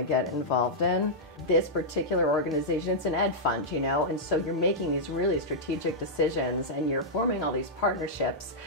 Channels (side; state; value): both; normal; correlation -0.09